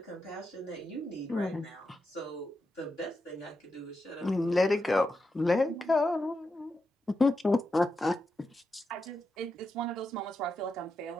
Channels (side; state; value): both; normal; correlation 0.87